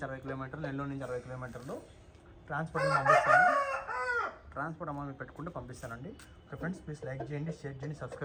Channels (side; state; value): both; identical; correlation 1.00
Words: 60 కిలోమీటర్లు, నెల్లూరు నుంచి 60 కిలోమీటర్లు. ట్రాన్స్పోర్ట్ పంపిస్తాను. ట్రాన్స్పోర్ట్ అమౌంట్ మీరు పెట్టుకుంటే పంపిస్తానండి. ఓకే ఫ్రెండ్స్, ప్లీజ్ లైక్ చేయండి, షేర్ చేయండి,